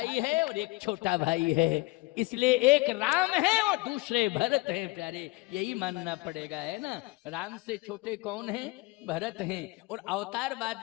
है और एक छोटा भाई है, इसलिए एक राम है और दूसरे भरत हैं प्यारे, यही मानना पड़ेगा, है ना। राम से छोटे कौन हैं? भरत हैं। और अवतार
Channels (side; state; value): right; quieter; 23.2 dB